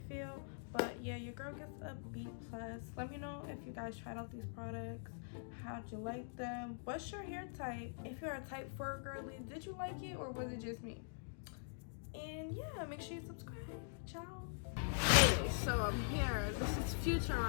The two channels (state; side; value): silent; right; digital silence